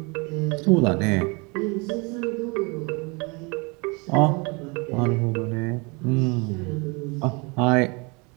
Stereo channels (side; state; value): left; quieter; 29.5 dB